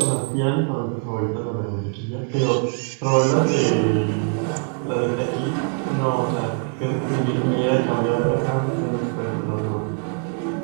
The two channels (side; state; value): left; quieter; 38.2 dB